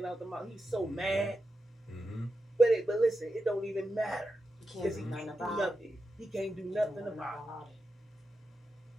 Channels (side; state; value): both; normal; correlation 0.89